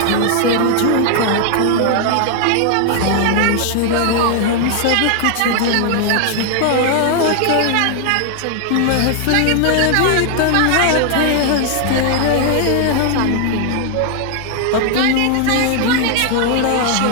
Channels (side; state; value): both; different; correlation 0.00